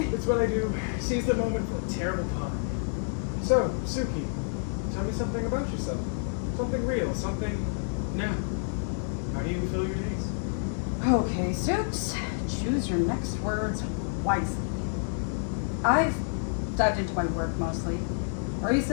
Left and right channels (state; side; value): silent; right; digital silence